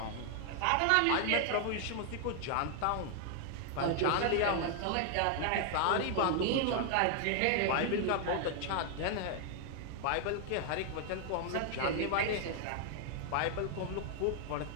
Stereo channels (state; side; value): different; both; correlation 0.00